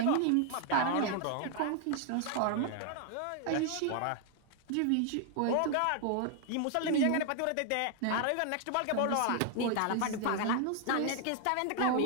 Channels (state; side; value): different; both; correlation 0.00